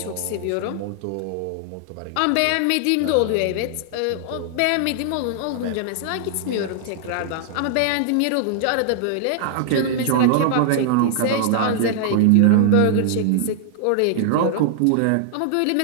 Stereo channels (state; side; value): different; both; correlation -0.01